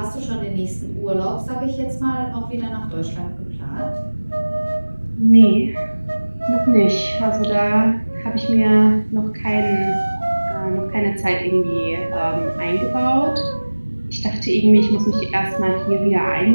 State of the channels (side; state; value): both; inverted; correlation -1.00